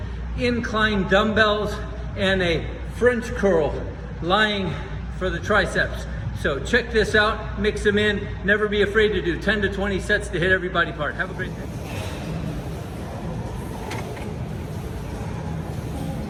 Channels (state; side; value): identical; both; correlation 1.00